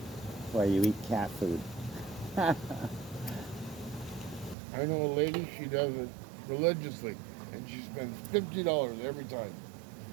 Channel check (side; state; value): left; drops out; at 4.5 s